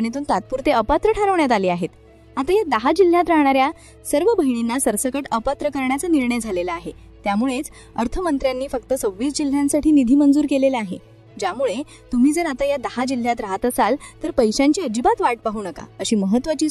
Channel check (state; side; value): identical; both; correlation 1.00